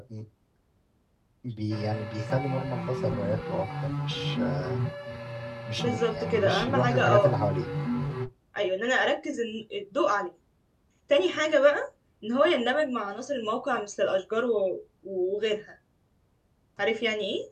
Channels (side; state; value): both; identical; correlation 1.00